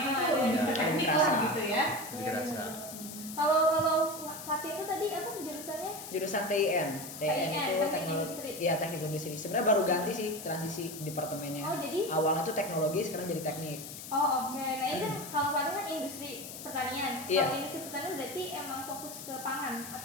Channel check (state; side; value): noise; left; hiss, 11 dB below the sound